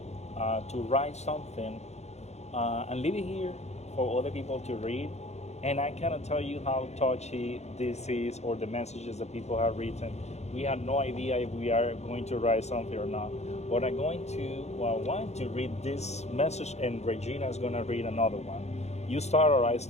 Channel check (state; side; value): late; right; 0.32 ms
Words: to write something and leave it here for other people to read. And I cannot tell you how touchy this is or the messages that people have written. We have no idea if we are going to write something or not. But I want to read this message, and Regina is going to read another one. You start or I